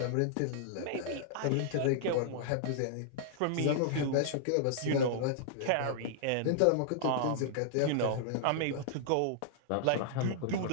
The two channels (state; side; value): different; both; correlation -0.01